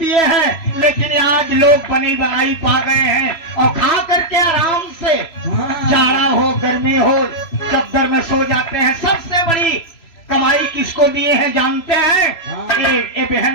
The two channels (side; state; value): right; late; 3.0 ms